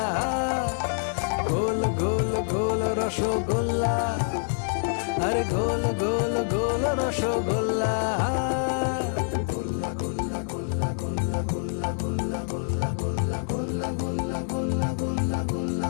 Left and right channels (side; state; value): right; silent; 61 dB below the other